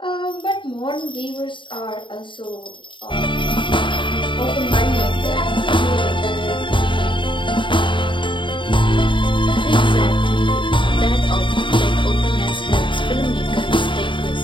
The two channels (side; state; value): right; late; 0.24 ms